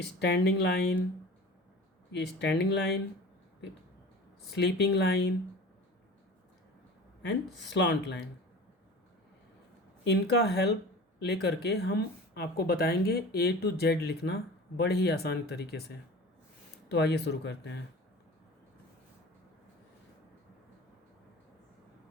लाइन, ये स्टैंडिंग लाइन, फिर स्लीपिंग लाइन एंड स्लॉन्ट लाइन। इनका हेल्प लेकर के हम आपको बताएंगे A to Z लिखना बड़े ही आसान तरीके से। तो आइए शुरू करते हैं।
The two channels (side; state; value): both; normal; correlation 0.38